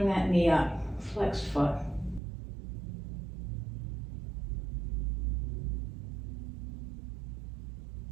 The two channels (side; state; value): left; drops out; at 2.2 s